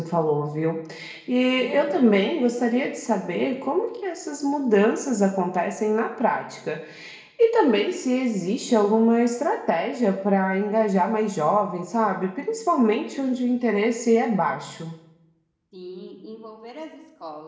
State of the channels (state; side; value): identical; both; correlation 1.00